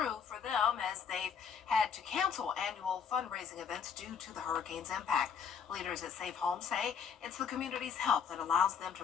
for them as they've had to cancel annual fundraising events due to the hurricane's impact. Leaders at Safe Homes say it's the community's help that allows them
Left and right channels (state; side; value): quieter; right; 6.8 dB